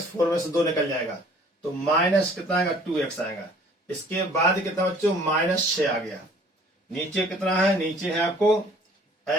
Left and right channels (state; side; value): normal; both; correlation 0.54